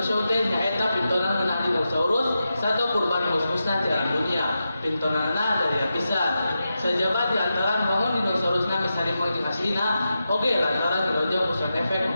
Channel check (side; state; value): both; inverted; correlation -0.89